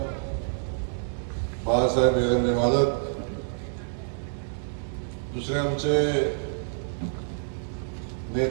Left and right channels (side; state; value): left; silent; digital silence